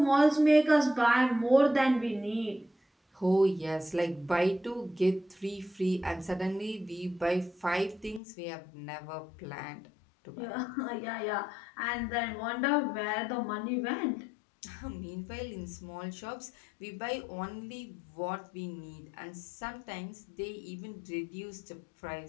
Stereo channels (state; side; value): drops out; right; at 8.2 s